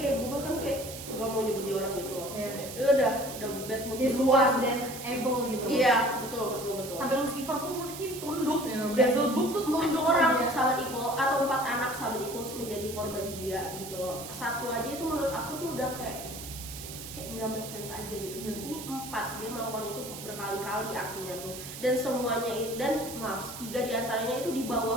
kayak gue bahkan kayak gak mau nyebut dia orang gitu loh. Udah bad mood luas dan evil gitu. Iya, betul. Sampai Lucifer pun mungkin tunduk ya. Devil tuh orang sahabat Equal atau 4 anak sahabat Equal menjadi korban dia gitu loh. Satu aja itu menurut aku tuh udah kayak nggak make sense aja gitu. Dan ini 4, dia melakukan itu berkali-kali artinya tuh. Dan semuanya dan 3 diantaranya itu di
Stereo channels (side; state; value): right; noise; hiss, 11 dB below the sound